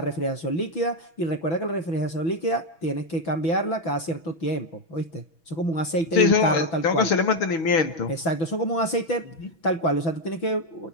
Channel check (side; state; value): right; late; 6.1 ms